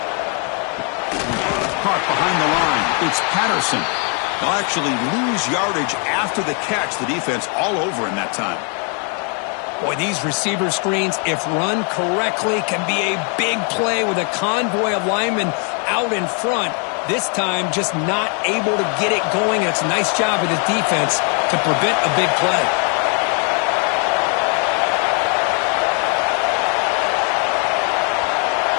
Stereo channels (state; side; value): quieter; right; 39.0 dB